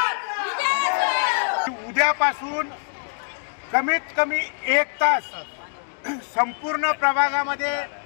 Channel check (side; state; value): right; silent; 63 dB below the other